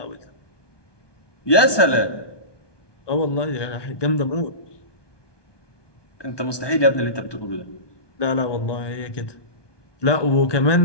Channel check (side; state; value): right; late; 1.2 ms